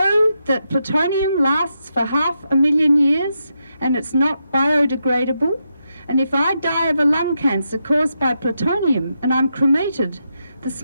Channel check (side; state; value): both; inverted; correlation -0.84